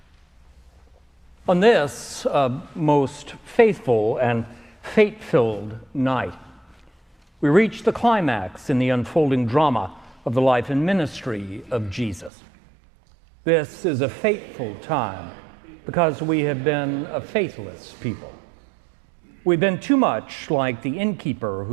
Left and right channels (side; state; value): left; drops out; at 12.3 s